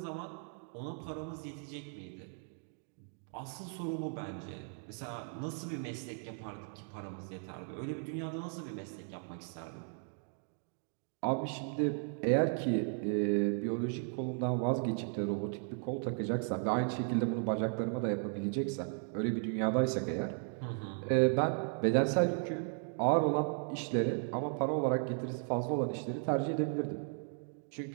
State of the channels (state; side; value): silent; left; 54 dB below the other